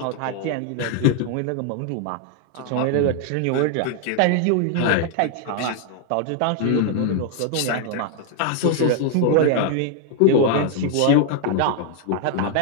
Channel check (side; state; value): both; different; correlation 0.00